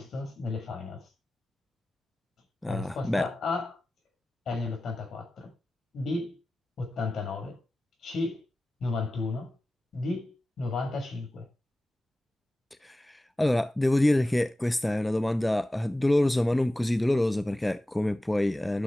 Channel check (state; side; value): normal; both; correlation 0.95